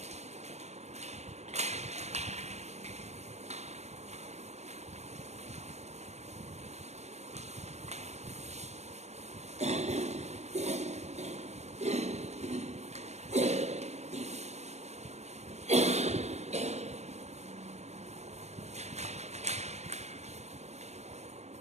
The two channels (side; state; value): left; late; 0.32 ms